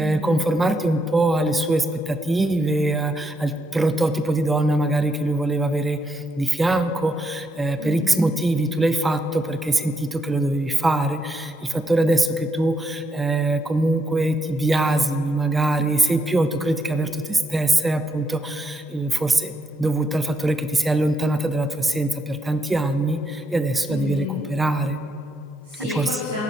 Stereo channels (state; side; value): normal; both; correlation 0.78